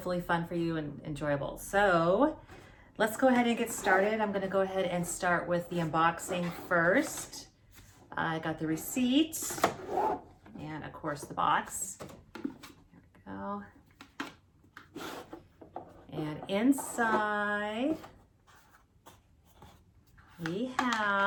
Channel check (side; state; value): both; identical; correlation 1.00